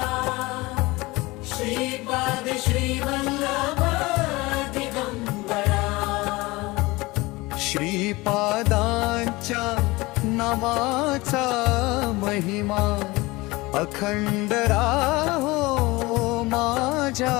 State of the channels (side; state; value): right; quieter; 22.0 dB